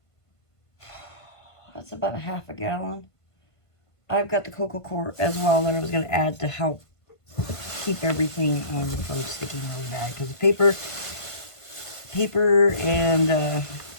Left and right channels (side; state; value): right; late; 1.5 ms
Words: that's about a half a gallon. I've got the cocoa core as well that I was going to add to help keep everything from sticking really bad. Because the paper and